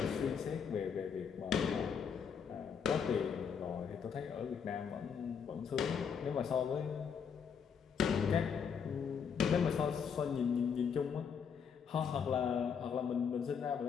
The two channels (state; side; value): quieter; right; 6.8 dB